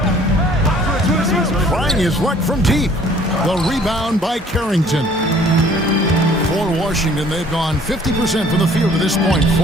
Trying his luck from deep. The rebound by Carrington. For Washington, they've gone 50% from the field to this point,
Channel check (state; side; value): normal; both; correlation 0.56